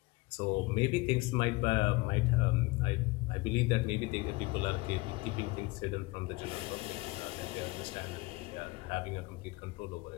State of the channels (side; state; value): right; quieter; 23.2 dB